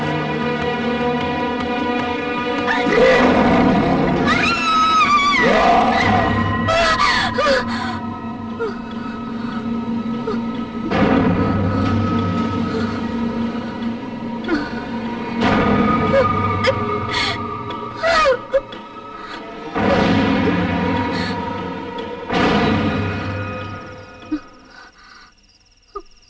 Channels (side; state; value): both; identical; correlation 1.00